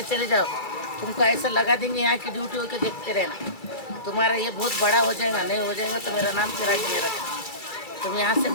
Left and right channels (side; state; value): right; late; 2.3 ms